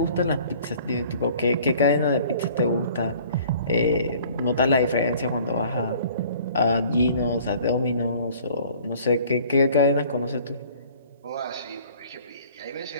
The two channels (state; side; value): inverted; both; correlation -0.52